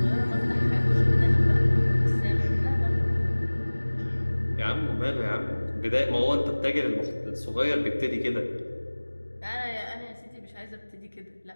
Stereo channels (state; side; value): inverted; both; correlation -1.00